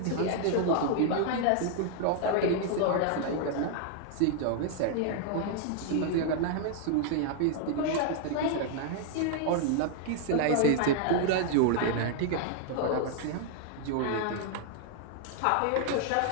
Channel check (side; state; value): both; different; correlation 0.00